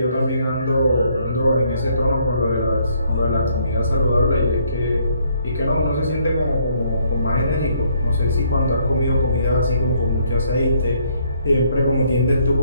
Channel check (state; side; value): inverted; both; correlation -0.68